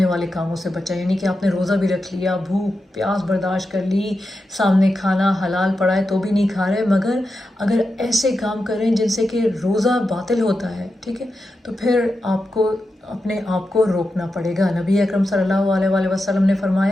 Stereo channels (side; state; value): both; normal; correlation 0.89